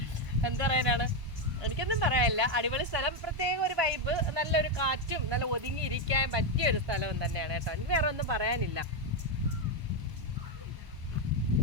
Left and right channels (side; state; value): left; late; 1.0 ms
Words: എന്താ പറയാനാണ്, എനിക്കൊന്നും പറയാനില്ല. അടിപൊളി സ്ഥലം, പ്രത്യേക ഒരു വൈബ്, നല്ലൊരു കാറ്റും നല്ല ഒതുങ്ങിയിരിക്കാൻ പറ്റിയ ഒരു സ്ഥലവും തന്നെയാണ് കേട്ടോ. എനിക്ക് വേറെ ഒന്നും പറയാനില്ല.